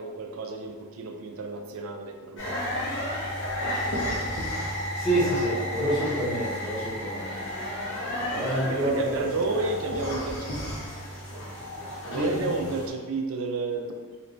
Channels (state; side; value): normal; both; correlation 0.15